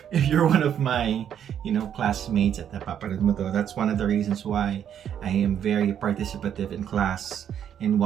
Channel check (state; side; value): quieter; left; 9.2 dB